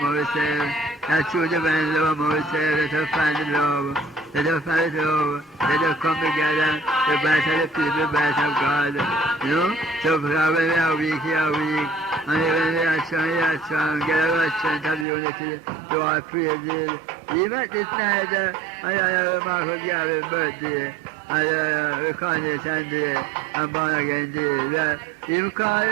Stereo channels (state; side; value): drops out; left; at 15.1 s